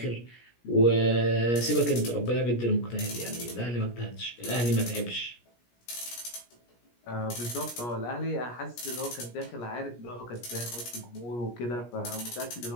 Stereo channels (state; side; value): late; right; 17 ms